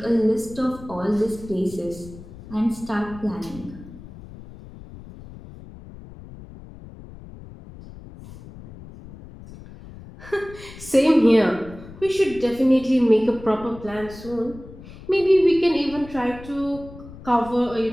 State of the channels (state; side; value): noise; left; rumble, 17 dB below the sound